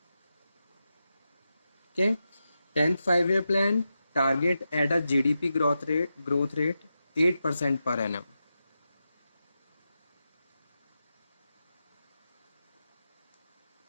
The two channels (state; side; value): inverted; both; correlation -0.89